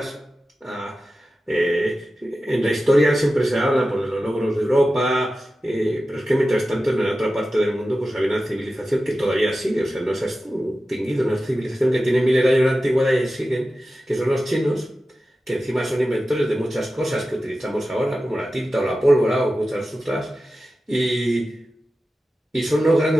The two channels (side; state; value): both; normal; correlation 0.93